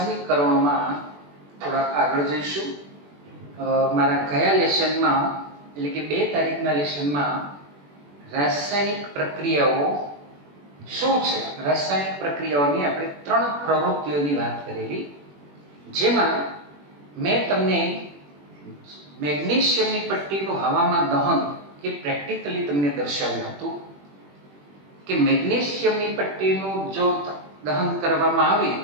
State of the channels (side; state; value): left; late; 21 ms